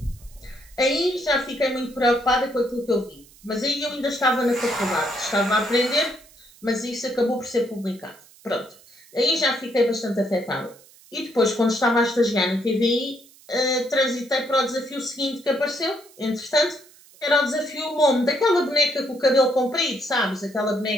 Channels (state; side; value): noise; right; hiss, 25 dB below the sound